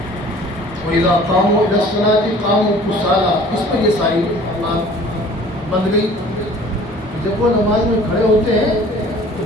وَإِذَا قَامُوا إِلَى الصَّلَاةِ قَامُوا كُسَالَىٰ، اس پر یہ ساری بات بند گئی۔ جب وہ نماز میں کھڑے ہوتے ہیں تو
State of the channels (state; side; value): normal; both; correlation 0.49